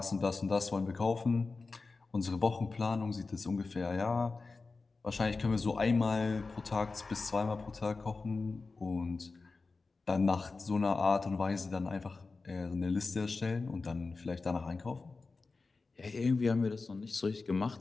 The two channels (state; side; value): quieter; right; 4.0 dB